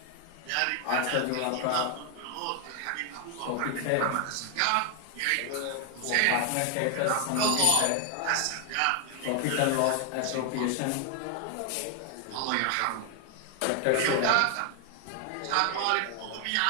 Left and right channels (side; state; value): both; different; correlation 0.00